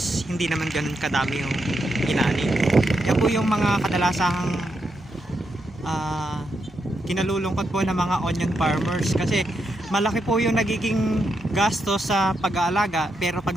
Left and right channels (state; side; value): normal; both; correlation 0.83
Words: hindi naman ganun kadami yung inaani. Yan po yung mga kadalasang kinalulungkot po ng mga onion farmers kasi malaki po yung nagiging gasto sa pag-aalaga pero